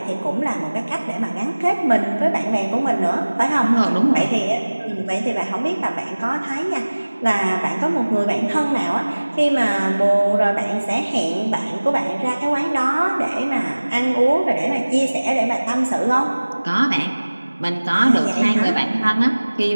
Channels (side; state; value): both; inverted; correlation -1.00